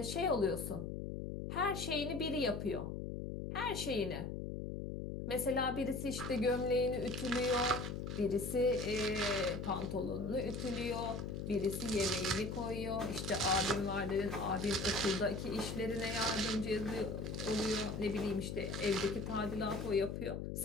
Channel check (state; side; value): noise; left; hum, 5 dB below the sound